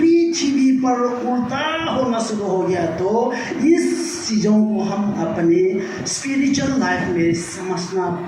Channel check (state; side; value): identical; both; correlation 1.00